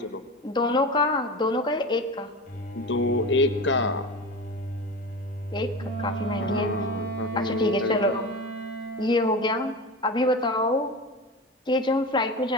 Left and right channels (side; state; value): both; normal; correlation 0.28